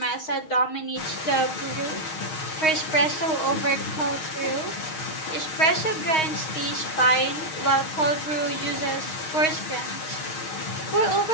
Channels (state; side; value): late; right; 6.4 ms